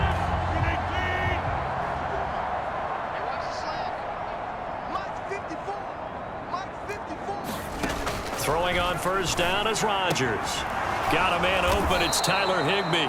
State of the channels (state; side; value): identical; both; correlation 1.00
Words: Throwing on first down is Rodgers. Got a man open. It's Tyler Higbee.